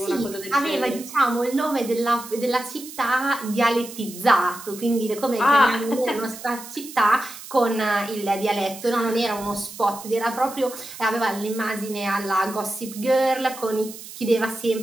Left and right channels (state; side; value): noise; right; hiss, 14 dB below the sound